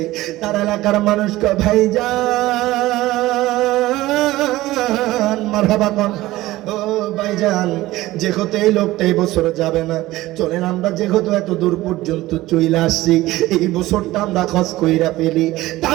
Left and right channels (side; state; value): left; quieter; 17.3 dB